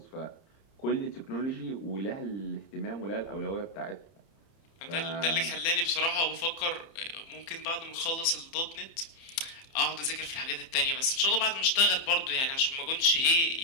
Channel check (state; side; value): late; right; 30 ms